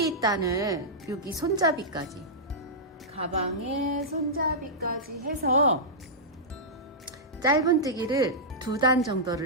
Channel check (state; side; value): normal; both; correlation -0.12